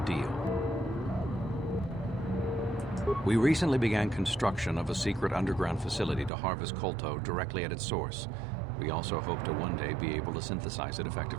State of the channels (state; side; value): drops out; left; at 6.3 s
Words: deal. We recently began construction of a secret underground facility to harvest Kolto directly at its source. We also hope to one day be able to synthesize it